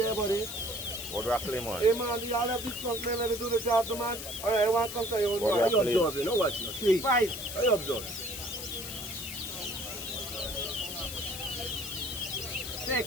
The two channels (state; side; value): noise; left; hiss, 8 dB below the sound